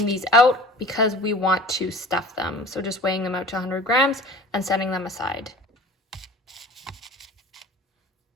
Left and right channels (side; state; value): both; normal; correlation 0.42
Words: these out because we want to stuff them. So just weighing them out to 100 grams and setting them aside.